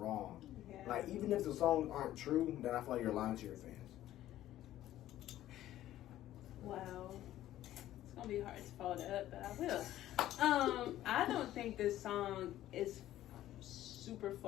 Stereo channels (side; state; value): right; quieter; 13.6 dB